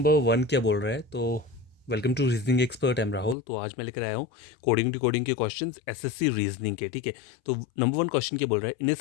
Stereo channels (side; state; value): right; drops out; at 3.4 s